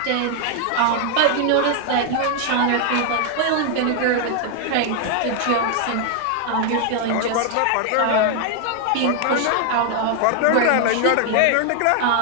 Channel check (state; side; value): different; both; correlation 0.00